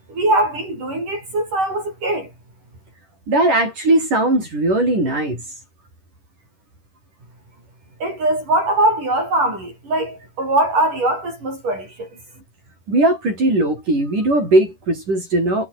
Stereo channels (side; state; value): left; late; 10 ms